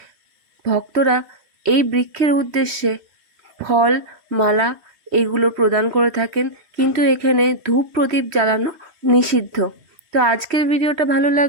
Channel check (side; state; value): left; late; 3.1 ms